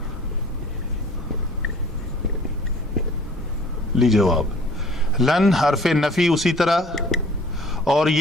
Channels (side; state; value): both; normal; correlation 0.51